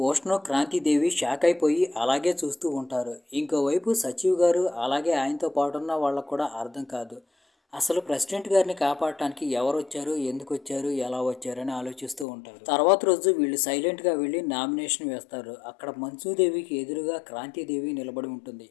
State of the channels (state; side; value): drops out; right; at 12.2 s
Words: క్రాంతిదేవి షాక్ అయిపోయి అలాగే చూస్తూ ఉంటారు. ఇంకోవైపు సచివ్ గారు అలాగే ఆయనతో పాటున్న వాళ్ళకు కూడా అర్థం కాదు. అసలు ప్రెసిడెంట్ గారిని కాపాడటానికి ఎవరు వచ్చారు, ఎందుకు వచ్చారు, ఎలా వచ్చారు అని ఆలోచిస్తూ ఉంటారు. తర్వాత రోజు వీళ్ళు సైలెంట్గా వెళ్ళి నామినేషన్ వేస్తారు. అక్కడ మంచుదేవికి ఎదురుగా క్రాంతిదేవి నిలబడి ఉంటుంది.